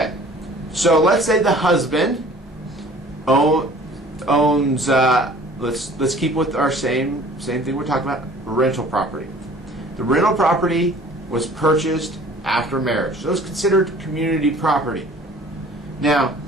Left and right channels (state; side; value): normal; both; correlation 0.50